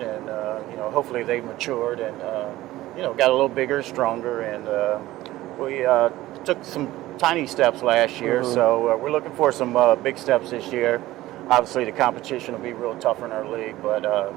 and hopefully they've matured and got a little bigger, stronger, and we took some tiny steps last year. Mm-hmm. So we're looking for some big steps this year. Obviously, the competition will be real tough in our league, but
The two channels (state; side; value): quieter; left; 16.5 dB